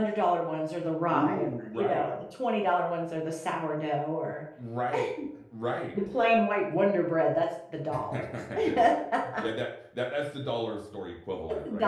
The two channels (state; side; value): identical; both; correlation 1.00